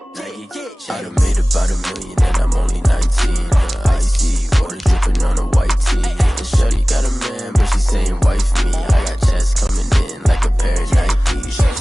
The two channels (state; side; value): normal; both; correlation 0.98